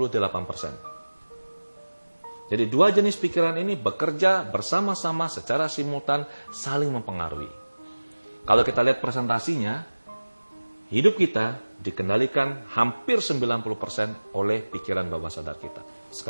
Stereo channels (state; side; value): inverted; both; correlation -1.00